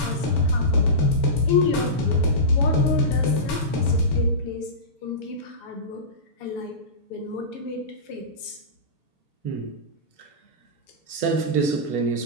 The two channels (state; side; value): late; right; 6.9 ms